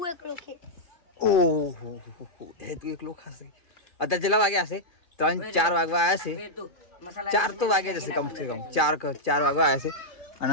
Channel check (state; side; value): late; right; 2.4 ms